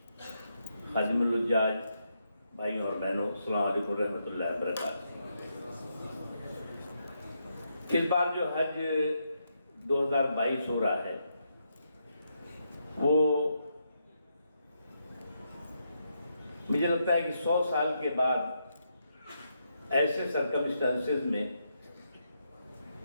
खादिमुल हुज्जाज भाइयों और बहनों, अस्सलाम वालेकुम रहमतुल्लाहि व बरकातहू। इस बार जो हज 2022 हो रहा है वो मुझे लगता है कि 100 साल के बाद ऐसे सर्कमस्टेंसेस में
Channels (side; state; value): both; inverted; correlation -0.81